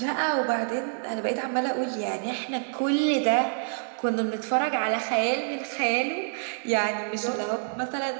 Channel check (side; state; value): left; silent; digital silence